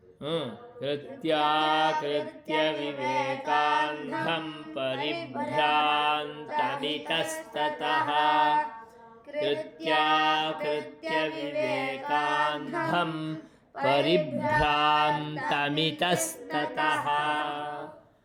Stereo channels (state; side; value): identical; both; correlation 1.00